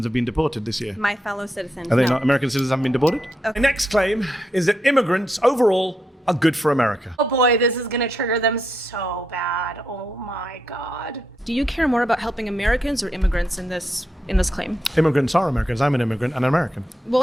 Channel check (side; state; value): both; normal; correlation 0.82